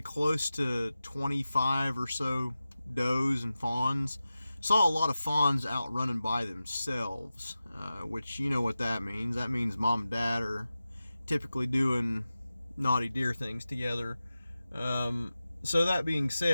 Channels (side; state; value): both; inverted; correlation -0.94